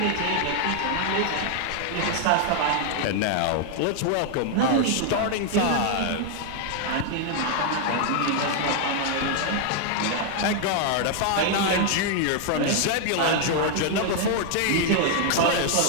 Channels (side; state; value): both; different; correlation 0.00